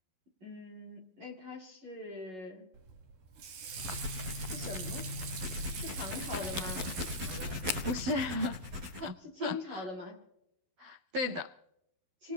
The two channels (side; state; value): left; late; 11 ms